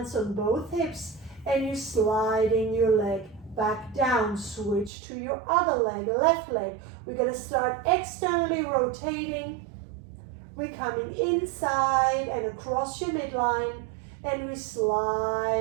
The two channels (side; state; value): left; drops out; at 4.9 s